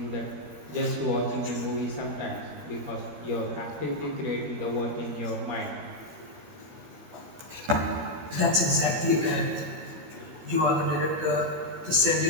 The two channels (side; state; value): left; late; 13 ms